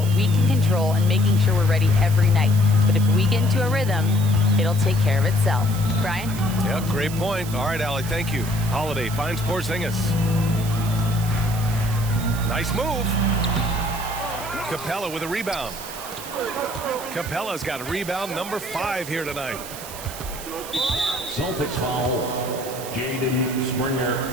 we can control and making sure we're ready every night. But if we get into a rhythm, it'll take care of itself." Brian? Yeah, great point. All right, Allie, thank you. Holiday finds Porzingis. Nice move. Capella with a rebound. Capella's got a rebound number 5 here tonight. Celtics foul. Jaden Springer.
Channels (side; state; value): right; noise; hiss, 12 dB below the sound